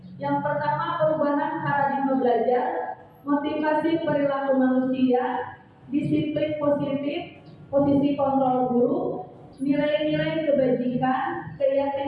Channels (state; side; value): identical; both; correlation 1.00